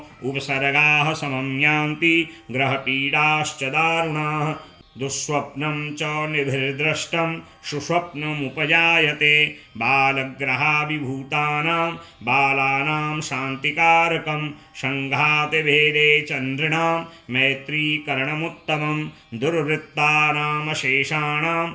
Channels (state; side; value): identical; both; correlation 1.00